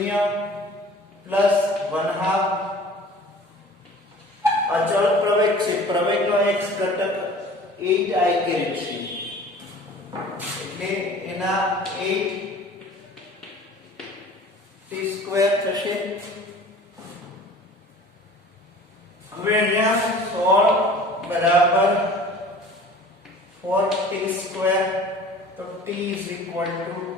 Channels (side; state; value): both; normal; correlation 0.45